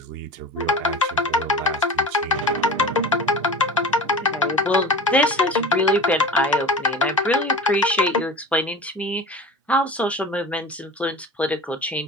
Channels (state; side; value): normal; both; correlation 0.35